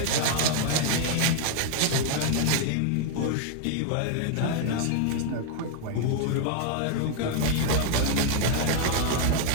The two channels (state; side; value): different; both; correlation 0.00